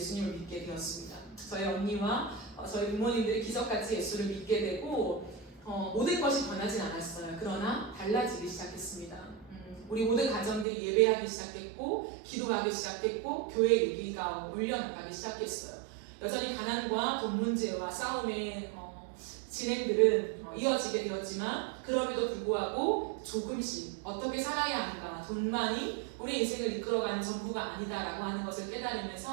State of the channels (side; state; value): left; drops out; at 10.7 s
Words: 믿게 되었습니다. 저희 언니와 저희 부모님들이 기적같이 예수를 믿게 되고 모든 것이 변하진 않았어요. 그러나 달라지기 시작했습니다. 우리 모든 가정들이 예배하기 시작했고 기도하기 시작했고 교회 얘기가 울려나가기 시작했어요. 여전히 가난과 돈 문제와 싸움의 진행들은 이어지게 되었지만 그럼에도 불구하고 조금씩 어떻게 살아야 하는가, 돈만이 우리 인생을 이끌어가는 전부가 아니다라고 하는 것을